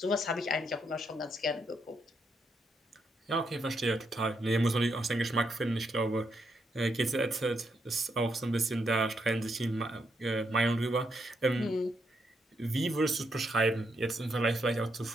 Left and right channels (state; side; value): normal; both; correlation 0.79